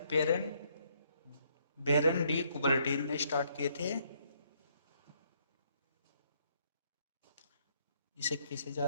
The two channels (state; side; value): inverted; both; correlation -0.70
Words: Baron de Coubertin ने स्टार्ट किए थे। इसे किसे